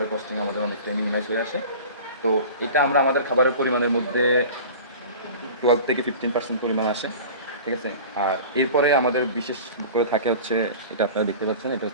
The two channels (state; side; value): inverted; both; correlation -0.38